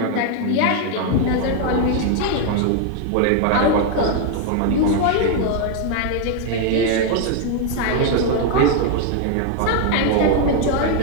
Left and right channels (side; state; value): both; different; correlation 0.00